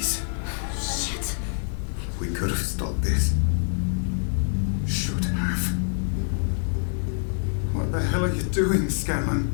Shit. We could have stopped this. Should have. What the hell are you doing, Scanlan?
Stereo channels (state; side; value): silent; right; digital silence